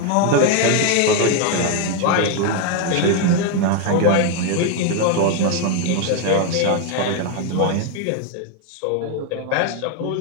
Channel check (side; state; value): both; different; correlation 0.01